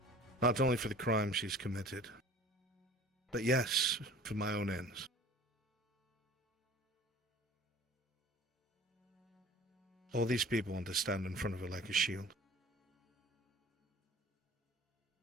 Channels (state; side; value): normal; both; correlation 0.45